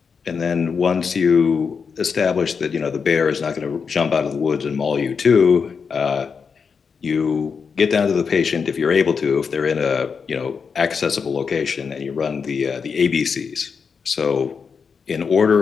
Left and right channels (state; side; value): quieter; right; 5.8 dB